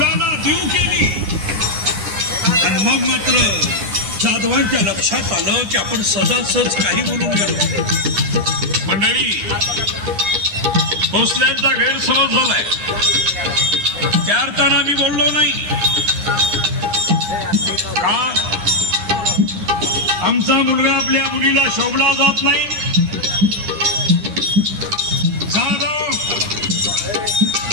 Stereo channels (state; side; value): late; left; 9.8 ms